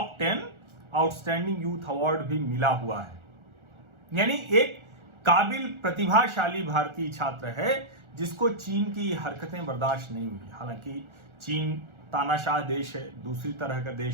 10 outstanding youth award भी मिला हुआ है। यानी एक काबिल प्रतिभाशाली भारतीय छात्र है जिसको चीन की हरकतें बर्दाश्त नहीं हुई। हालांकि चीन तानाशाह देश है, दूसरी तरह का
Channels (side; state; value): left; late; 1.4 ms